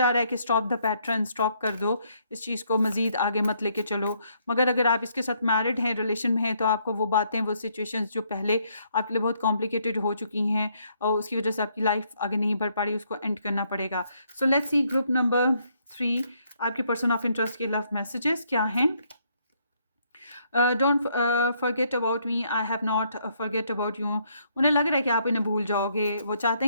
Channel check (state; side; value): inverted; both; correlation -0.71